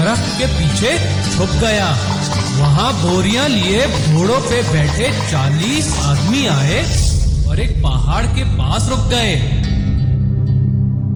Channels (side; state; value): both; identical; correlation 1.00